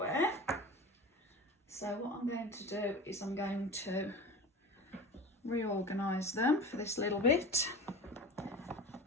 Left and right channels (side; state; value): both; normal; correlation 0.34